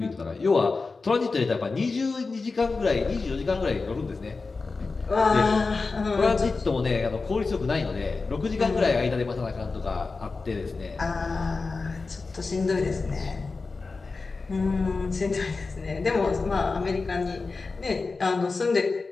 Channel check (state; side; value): quieter; right; 4.1 dB